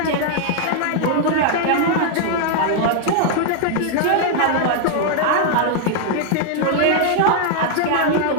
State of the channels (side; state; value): both; different; correlation 0.00